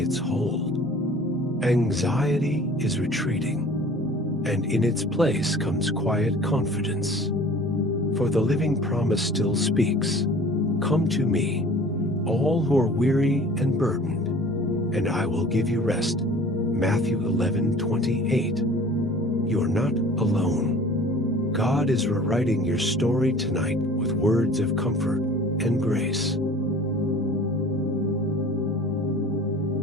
hold. Anxiety is retreating, and in its place comes quiet confidence. For the living promise still speaks, "Come to me, all who are weary and burdened, and I will give you rest." Matthew 11:28. You are not alone. God is rewriting your story tonight with words of comfort and grace.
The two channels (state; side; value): normal; both; correlation 0.46